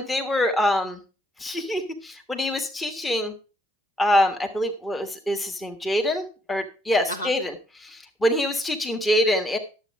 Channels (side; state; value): both; normal; correlation 0.72